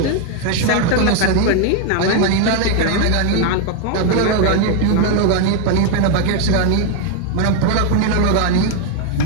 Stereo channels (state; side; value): different; both; correlation 0.00